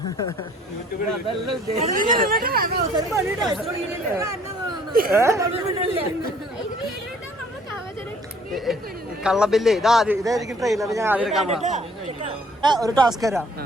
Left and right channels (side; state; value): both; normal; correlation 0.58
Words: കള്ളബില്ല് ഇതായിരിക്കും ട്രെയിലർ. ഞാൻ ആദ്യം എടുക്കാൻ പോകാം. ഒരു ടാസ്ക് തരാം,